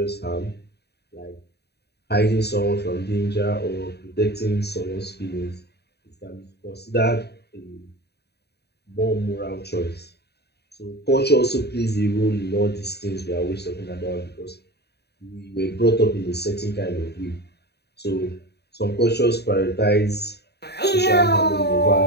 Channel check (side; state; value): right; late; 0.48 ms